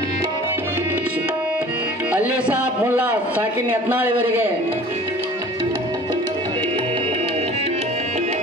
ಅಲ್ಲಿ ಸಾಬ್ ಮುಲ್ಲಾ ಸಾಕಿನ್ ಯತ್ನಾಳ್ ಇವರಿಗೆ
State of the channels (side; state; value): both; normal; correlation 0.46